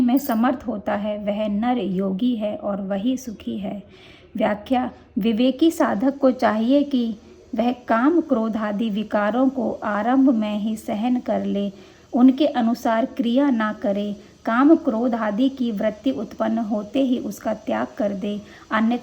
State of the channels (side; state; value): both; identical; correlation 1.00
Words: में समर्थ होता है वह नर योगी है और वही सुखी है। व्याख्या: विवेकी साधक को चाहिए कि वह काम क्रोध आदि विकारों को आरंभ में ही सहन कर ले, उनके अनुसार क्रिया ना करे। काम क्रोध आदि की वृत्ति उत्पन्न होते ही उसका त्याग कर दे,